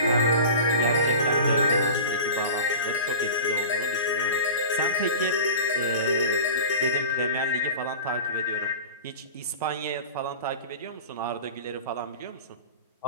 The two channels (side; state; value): both; inverted; correlation -0.35